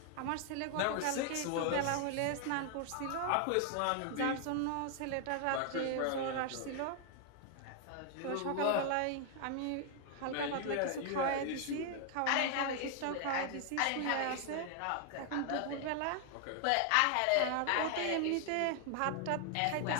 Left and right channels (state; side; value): different; both; correlation 0.00